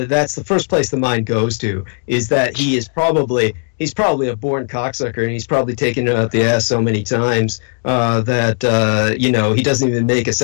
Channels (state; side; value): silent; right; digital silence